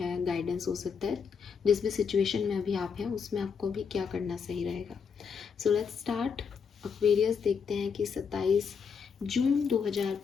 गाइडेंस हो सकता है। जिस भी सिचुएशन में अभी आप हैं उसमें आपको भी क्या करना सही रहेगा। So let's start. एक्वेरियस, देखते हैं कि 27 जून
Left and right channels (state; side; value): quieter; right; 6.2 dB